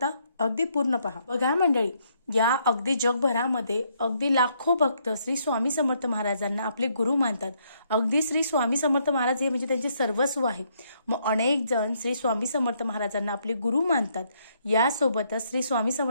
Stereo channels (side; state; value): both; inverted; correlation -0.72